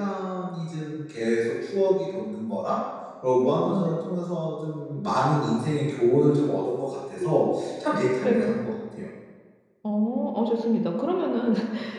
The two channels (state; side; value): identical; both; correlation 1.00